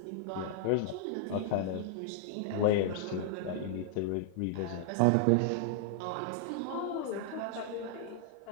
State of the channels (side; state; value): both; different; correlation -0.01